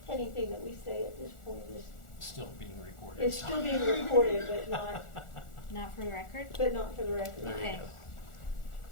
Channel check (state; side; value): late; right; 1.4 ms